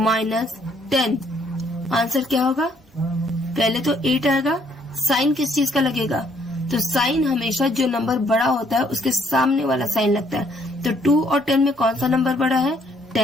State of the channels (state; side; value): normal; both; correlation 0.67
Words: 10 आंसर क्या होगा? पहले तो 8 आएगा। साइन किस चीज का लगेगा? तो साइन हमेशा जो नंबर बड़ा होता है उसके सामने वाला साइन लगता है। तो 2 और 10 में कौन सा नंबर बड़ा है?